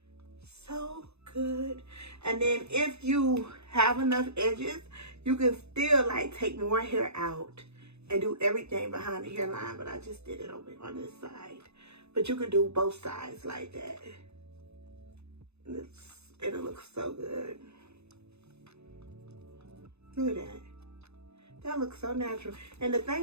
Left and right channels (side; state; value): left; late; 0.80 ms